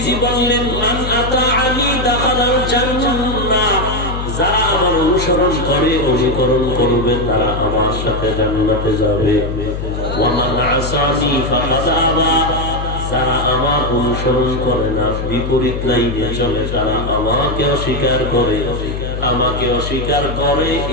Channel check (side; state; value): left; noise; hum, 5 dB below the sound